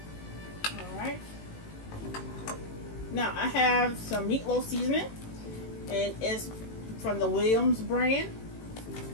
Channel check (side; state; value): right; late; 18 ms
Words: Alright. Now I have some meatloaf seasoning. And it's from the Williams brand.